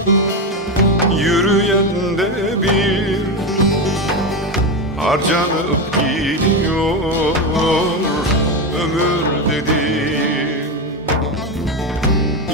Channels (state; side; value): normal; both; correlation 0.14